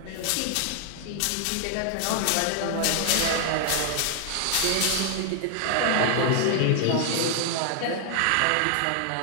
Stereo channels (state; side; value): different; both; correlation 0.00